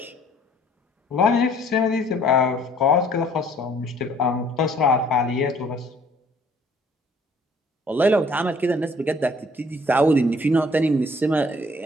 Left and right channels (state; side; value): normal; both; correlation 0.58